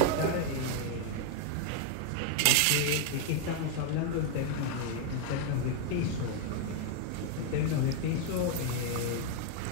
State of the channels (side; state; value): both; different; correlation 0.01